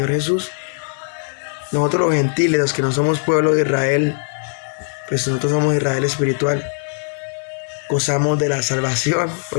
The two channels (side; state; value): right; silent; digital silence